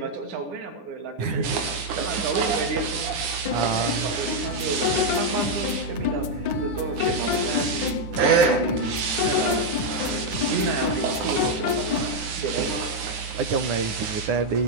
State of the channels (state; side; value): late; left; 9.7 ms